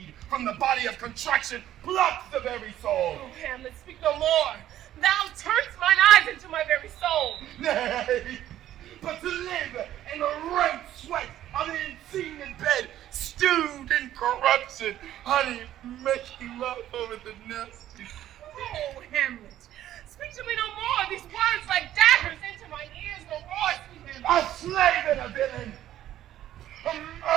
from the body of contraction plucks the very soul. Oh, Hamlet, speak no more. Thou turnest mine eyes into my very soul. Nay, but to live in the rank sweat of the unseen in bed, stewed in corruption, honey, making love over the nest. Oh, Hamlet, speak to me no more. These words like daggers into my ears no more, sweet Hamlet. A slave and a villain, a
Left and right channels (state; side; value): quieter; left; 12.5 dB